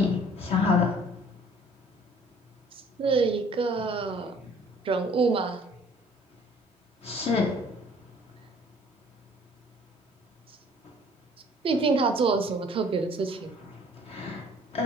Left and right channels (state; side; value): normal; both; correlation 0.55